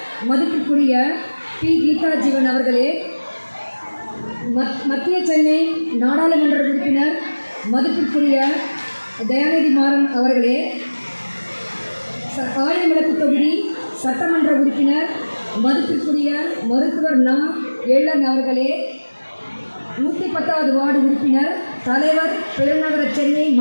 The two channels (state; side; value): inverted; both; correlation -1.00